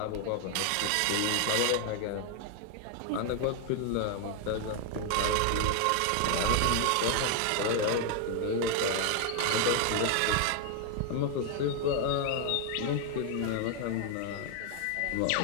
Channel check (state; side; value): different; both; correlation 0.00